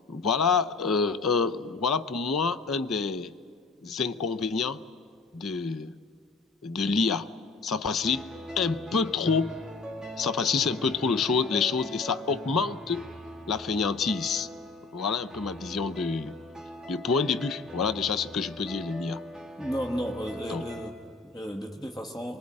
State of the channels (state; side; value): quieter; right; 4.2 dB